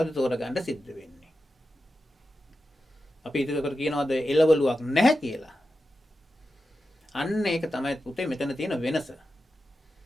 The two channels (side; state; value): both; normal; correlation 0.91